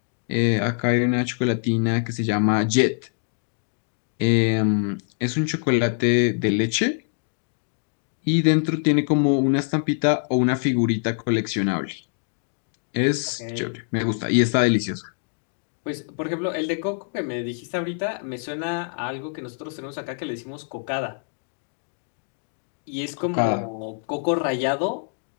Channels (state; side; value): silent; right; 62 dB below the other